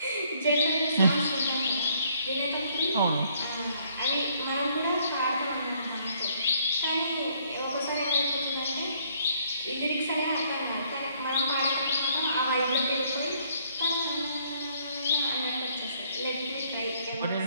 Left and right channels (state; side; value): inverted; both; correlation -0.65